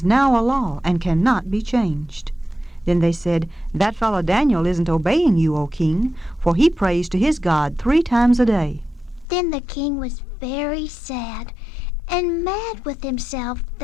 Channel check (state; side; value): drops out; right; at 9.2 s